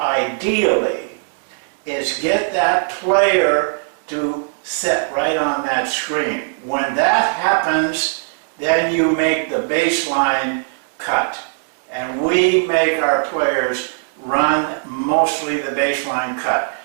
is get that player to sit right on that screen. When that happens, then you make the baseline cut. And we make our players run mostly the baseline cut.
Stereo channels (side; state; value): left; silent; digital silence